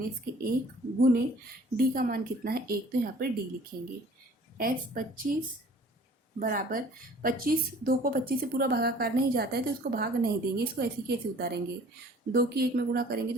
के 1 गुने D का मान कितना है? 1, तो यहाँ पर D लिखेंगे। S25 बराबर 25, 2 को 25 से पूरा भागाकार नहीं जाता है, तो इसको भाग नहीं देंगे, इसको ऐसे कैसे उतारेंगे? 2 की 1 में गुणा करेंगे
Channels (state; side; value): normal; both; correlation 0.51